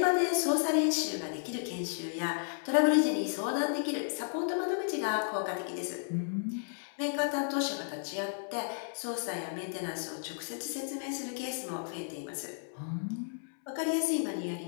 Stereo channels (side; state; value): right; silent; 56 dB below the other